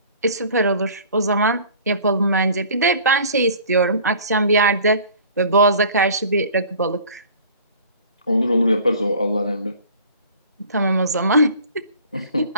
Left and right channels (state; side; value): inverted; both; correlation -0.47